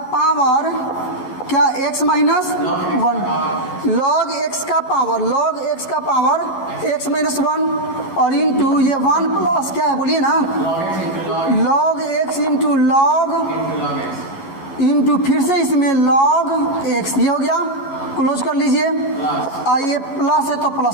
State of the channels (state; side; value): late; right; 11 ms